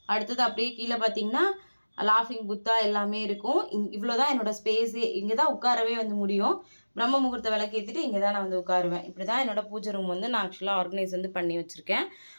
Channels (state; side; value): inverted; both; correlation -1.00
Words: அடுத்தது அப்படியே கீழே பார்த்தீங்கன்னா லாஃபிங் புத்தா எல்லாமே இருக்கும். இவ்வளோ தான் என்னோடய ஸ்பேஸே. இங்கே தான் உட்காரவே வந்து முடியும். பிரம்ம முகூர்த்த விளக்கு ஏற்றிட்டு இங்கே தான் நான் வந்து உட்காருவேன். இப்படி தான் என்னோடய பூஜை ரூம் வந்து நான் ஆக்சுவலாக ஆர்கனைஸ் வந்து பண்ணி வச்சுருக்கேன்.